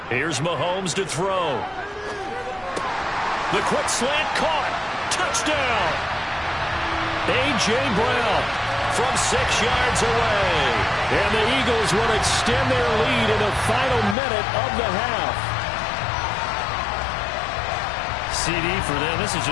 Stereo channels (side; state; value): right; drops out; at 14.2 s